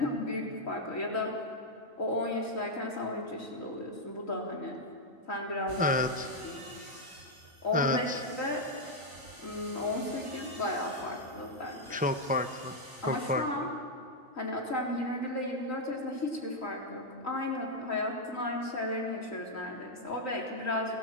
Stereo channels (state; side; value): normal; both; correlation -0.02